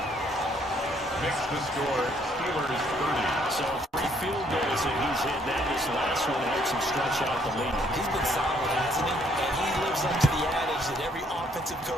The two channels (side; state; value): both; normal; correlation 0.67